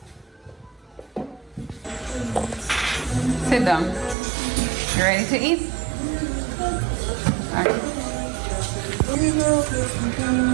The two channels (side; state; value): left; drops out; at 4.2 s